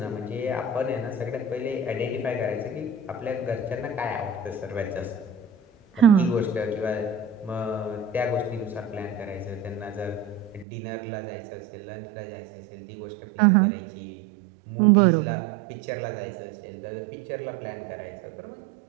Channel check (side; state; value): left; drops out; at 10.7 s